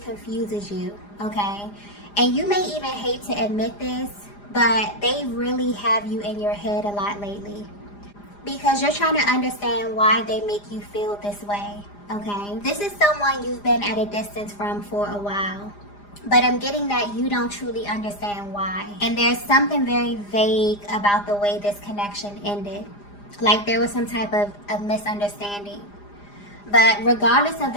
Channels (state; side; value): late; right; 4.9 ms